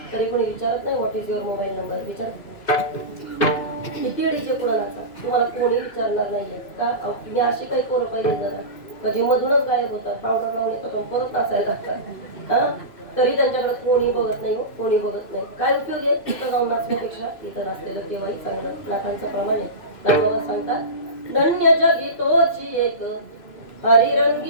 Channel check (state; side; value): late; right; 2.6 ms